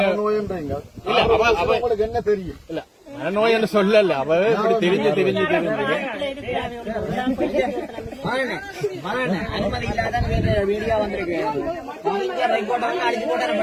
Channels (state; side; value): identical; both; correlation 1.00